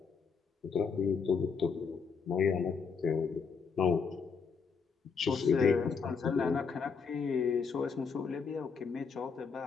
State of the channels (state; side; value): quieter; right; 5.6 dB